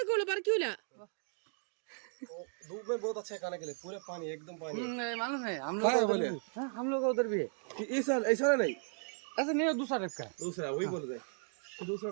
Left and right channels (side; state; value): left; silent; 54 dB below the other